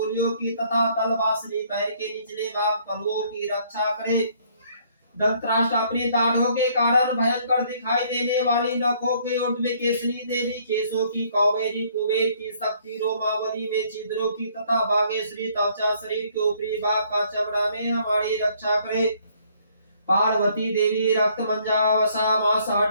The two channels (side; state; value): both; inverted; correlation -0.64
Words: की तथा तलवासनी पैर के निचले भाग तलुओं की रक्षा करे। धृतराष्ट्र अपने दाढ़ों के कारण भयंकर दिखाई देने वाली नखों के ऊर्ध्व में केसरी देवी, केशों की कौबेरी, कुबेर की शक्ति, रोमावली में छिद्रों की तथा भागेश्वरी त्वचा, शरीर के ऊपरी भाग का चमड़ा में हमारी रक्षा करे। पार्वती देवी रक्त मंजा, वसा, मांस,